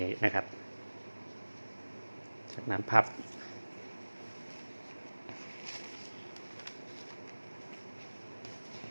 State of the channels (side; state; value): both; inverted; correlation -1.00